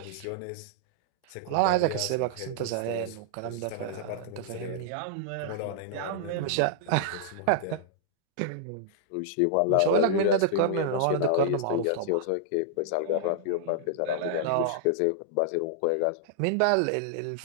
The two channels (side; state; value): both; different; correlation -0.01